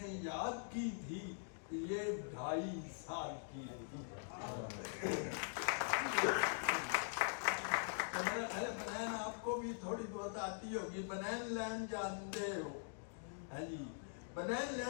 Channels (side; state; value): right; silent; digital silence